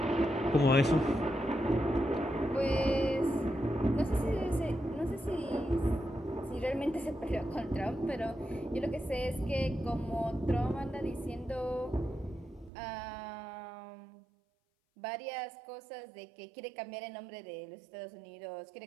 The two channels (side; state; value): left; drops out; at 12.7 s